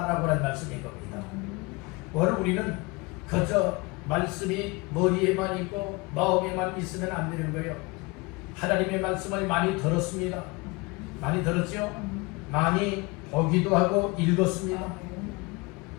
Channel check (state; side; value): quieter; right; 25.8 dB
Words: 하는 말씀인 겁니다. 오늘 우리는 그저 말씀이 머리에만 있고 마음에만 있으면 안 되는 거예요. 하나님의 말씀을 많이 들었습니다. 많이 들었죠? 많이 보기도 하고 읽었습니다.